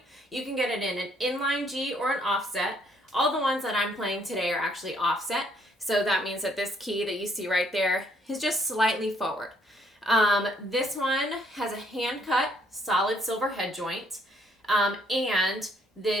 You can get it in an inline G or an offset. All the ones that I'm playing today are actually offset. So that means that this key that you see right there is just slightly forward. This one has a hand-cut solid silver head joint, and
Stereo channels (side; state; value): both; normal; correlation 0.67